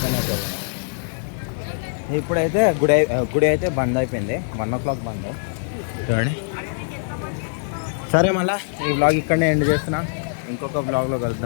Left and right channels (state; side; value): silent; right; 64 dB below the other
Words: అవుతుంది. ఇప్పుడైతే గుడి అయితే బంద్ అయిపోయింది. 1 o'clock బంద్. చూడండి. సరే, మళ్ళీ ఈ వ్లాగ్ ఇక్కడనే ఎండ్ చేస్తున్నా. ఇంకొక వ్లాగ్లో